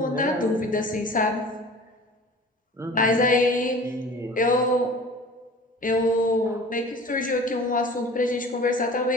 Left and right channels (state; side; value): normal; both; correlation 0.42